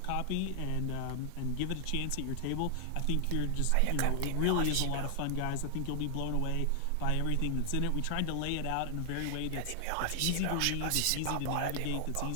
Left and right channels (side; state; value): both; different; correlation 0.00